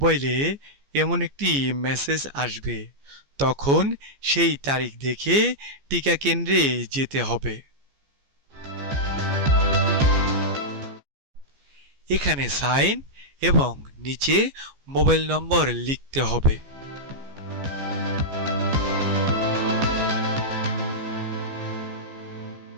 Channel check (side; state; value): left; late; 14 ms